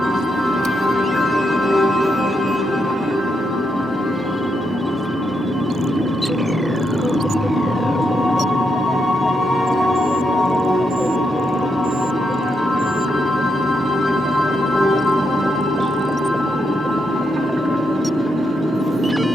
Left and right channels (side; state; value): both; normal; correlation 0.81